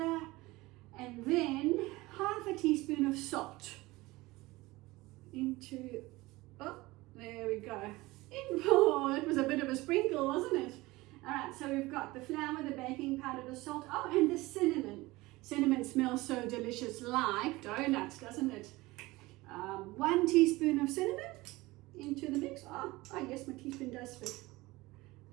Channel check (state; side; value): quieter; left; 20.5 dB